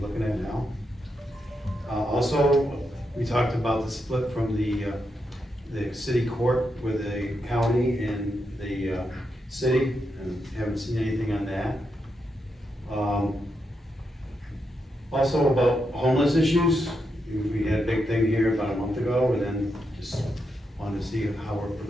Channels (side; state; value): both; normal; correlation 0.83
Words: at now. Also, we talked about the split from the city court with the county and the, city, and haven't seen anything on that. Also about homeless issues, we had a big thing here about a month ago, and then just wanted to see how we're